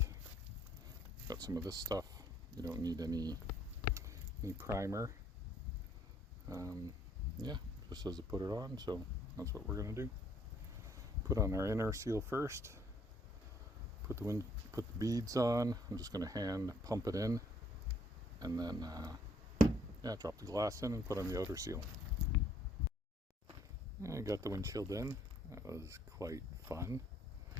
Got some of this stuff. You don't need any primer. Yeah, just says to put it on, so that's what we're going to do. Put on our inner seal first. Put the beads on. I'm just going to hand pump it in, and then yeah, drop the glass in and put on the outer seal. I got the windshield in. That was quite fun.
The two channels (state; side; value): normal; both; correlation 0.65